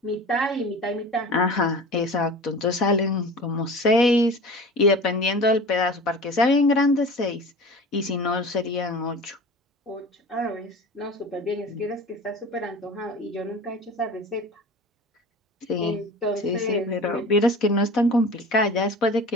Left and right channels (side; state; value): both; normal; correlation 0.37